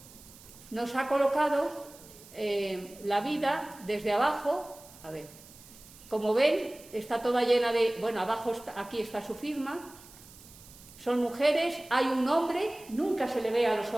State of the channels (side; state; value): right; noise; hiss, 21 dB below the sound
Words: nos ha colocado la vida desde abajo. A ver, como ven, está toda llena de... Bueno, abajo aquí está su firma. Son mujeres, hay un hombre, nunca se le ve a los